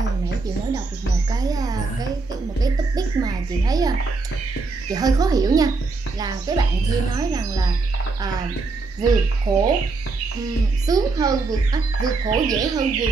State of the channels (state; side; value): quieter; left; 3.9 dB